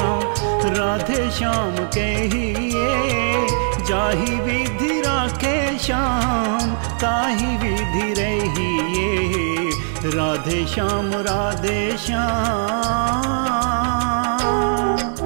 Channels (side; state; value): left; silent; 66 dB below the other